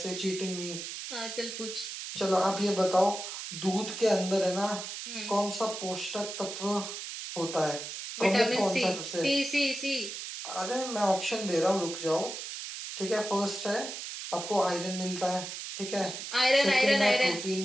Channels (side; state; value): right; noise; hiss, 8 dB below the sound